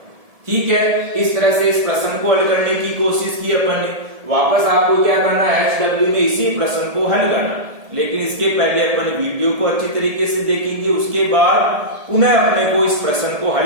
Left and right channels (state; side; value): late; left; 1.7 ms